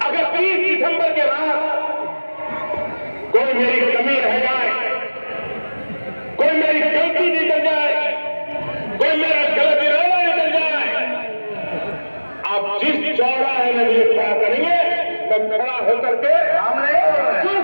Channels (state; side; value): inverted; both; correlation -1.00